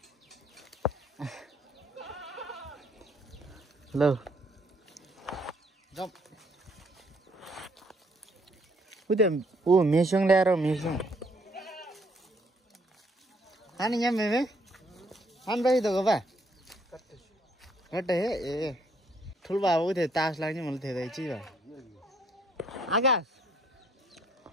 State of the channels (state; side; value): normal; both; correlation 0.67